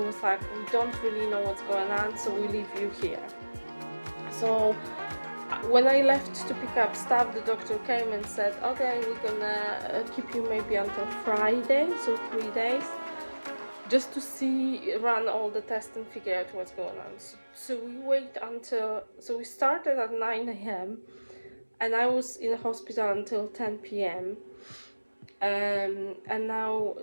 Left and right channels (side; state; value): both; inverted; correlation -1.00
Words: was like, we don't really know what's going on, so we leave you here. So when I left to pick up stuff, the doctor came and said, okay, we're gonna keep you maybe until Friday, so 3 days, just to run all the tests and figure out what's going on. So we started at 9 a.m. and I was in the hospital until 10 p.m. And now